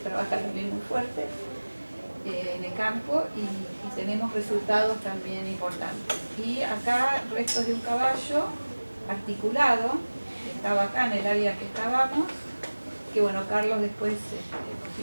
también muy fuerte en el campo y tenemos resultados también importantes. Y acá restos de un caballo articulado, que estaba acá en el área que excavamos, que bueno, Carlos después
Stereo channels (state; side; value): inverted; both; correlation -1.00